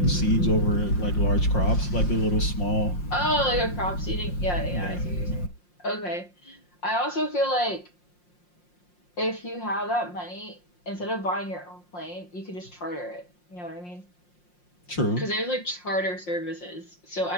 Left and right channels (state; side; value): late; right; 5.6 ms